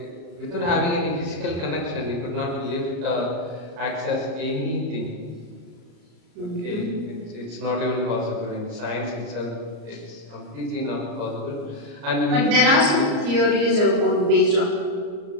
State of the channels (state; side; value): late; left; 34 ms